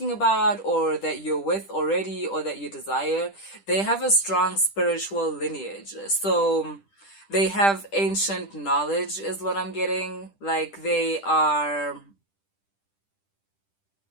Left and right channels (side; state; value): right; late; 10 ms